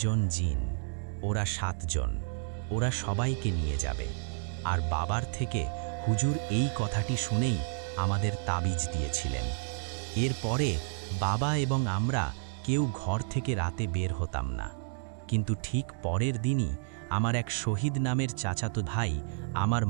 জন জিন। ওরা 7 জন, ওরা সবাইকে নিয়ে যাবে। আর বাবার থেকে হুজুর এই কথাটি শুনেই আমাদের তাবিজ দিয়েছিলেন। এরপরে বাবা এবং আমরা কেউ ঘর থেকে রাতে বের হতাম না। কিন্তু ঠিক পরের দিনই আমার এক শহীদ নামের চাচাতো ভাই আমার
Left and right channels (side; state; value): left; silent; digital silence